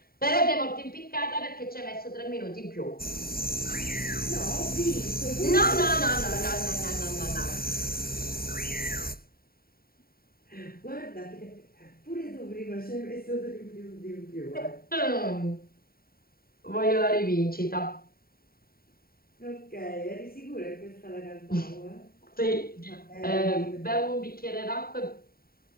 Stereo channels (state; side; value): late; right; 0.43 ms